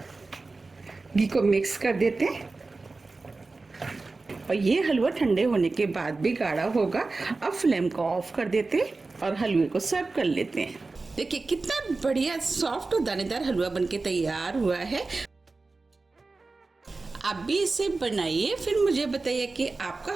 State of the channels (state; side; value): quieter; left; 3.6 dB